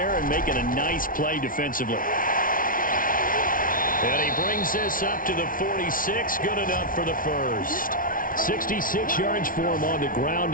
and making a nice play defensively. And he brings this up to the 46. Good enough for the first. 66 yards for him on the ground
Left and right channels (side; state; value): right; late; 0.40 ms